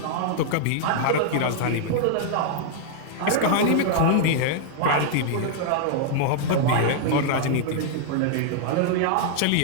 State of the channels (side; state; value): both; different; correlation -0.01